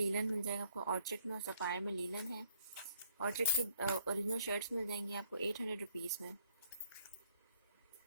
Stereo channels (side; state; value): both; inverted; correlation -0.67